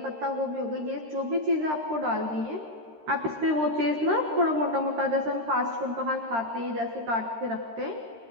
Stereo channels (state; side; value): late; left; 13 ms